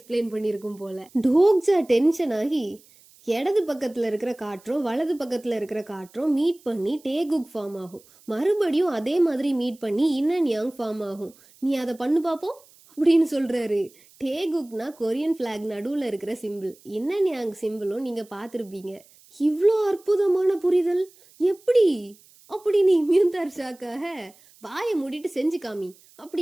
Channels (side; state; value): right; noise; hiss, 27 dB below the sound